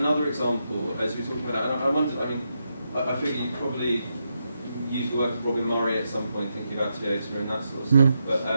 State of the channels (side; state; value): both; inverted; correlation -0.84